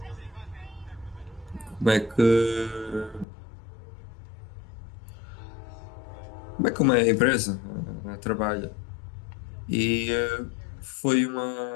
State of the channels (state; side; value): drops out; right; at 3.2 s